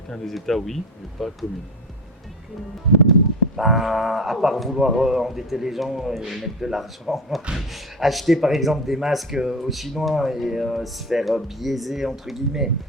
des États, oui, mais pas commune. À part vouloir endetter les gens et mettre de l'argent, acheter par exemple des masques aux Chinois et se faire biaiser entre guillemets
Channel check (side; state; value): both; normal; correlation 0.25